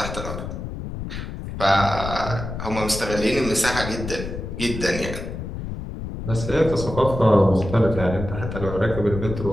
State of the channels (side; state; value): left; noise; rumble, 7 dB below the sound